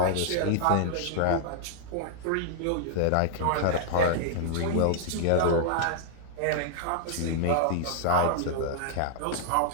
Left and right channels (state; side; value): different; both; correlation -0.01